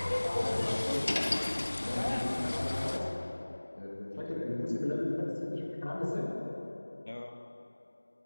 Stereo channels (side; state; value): both; inverted; correlation -1.00